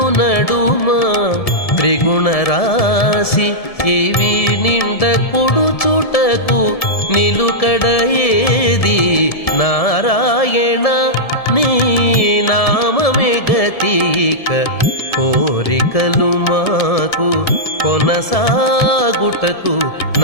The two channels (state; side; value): late; right; 1.7 ms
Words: నడుమ త్రిగుణరాశి ఇవి నిండ కుడుచుటకు నిలుకడ ఏది నారాయణ నీ నామమే గతిక కోరికలు మాకు కొనసాగుటకు